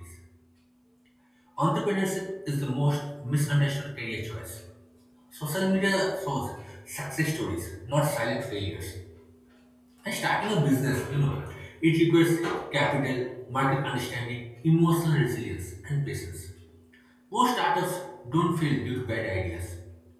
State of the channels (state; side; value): identical; both; correlation 1.00